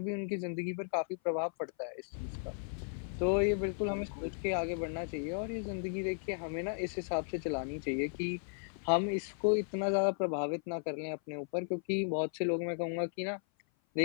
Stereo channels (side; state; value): right; silent; 54 dB below the other